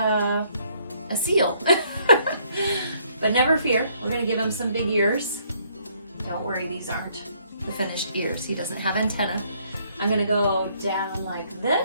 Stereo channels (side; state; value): both; inverted; correlation -0.67